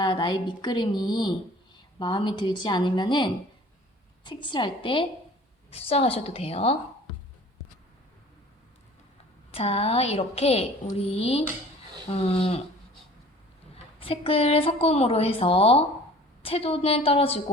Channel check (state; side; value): normal; both; correlation 0.48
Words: 나의 밑그림이 마음에 들지 않으면은 색칠할 때 수정하셔도 돼요. 자, 이렇게 우리 색을 섞음으로 해서 채도는